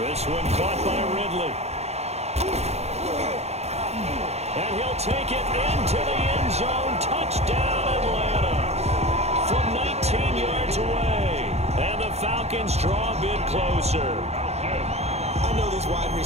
one caught by Ridley. And he'll take it into the end zone. Touchdown, Atlanta. From 19 yards away. And the Falcons draw a bit closer. I know these wide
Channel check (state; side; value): late; left; 0.31 ms